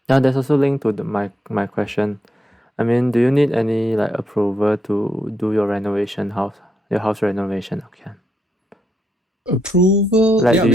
Yeah, there's also linked to my question. I mean, do you need any like approval to do your house renovation? Okay. Approval. Like, Yeah, do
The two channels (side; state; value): both; normal; correlation 0.80